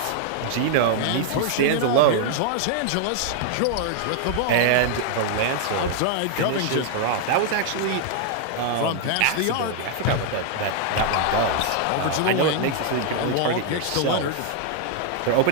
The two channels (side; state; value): both; different; correlation 0.00